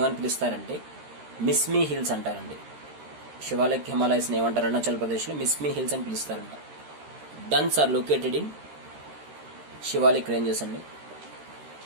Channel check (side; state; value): left; late; 13 ms